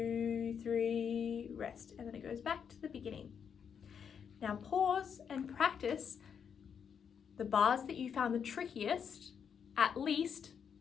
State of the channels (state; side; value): quieter; right; 7.3 dB